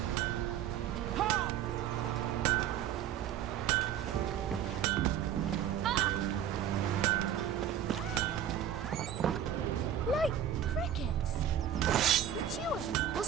Like crickets. You chew them or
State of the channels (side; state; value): left; quieter; 9.6 dB